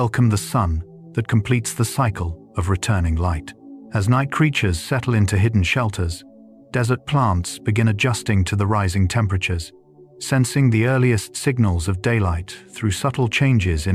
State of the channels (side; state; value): both; identical; correlation 1.00